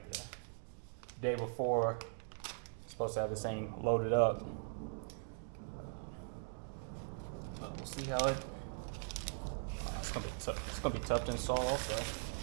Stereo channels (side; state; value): left; silent; digital silence